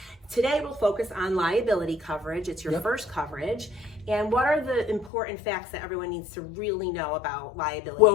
Today we'll focus on liability coverage. It's your first coverage. And what are the important facts that everyone needs to really know about liability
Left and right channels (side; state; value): right; drops out; at 5.1 s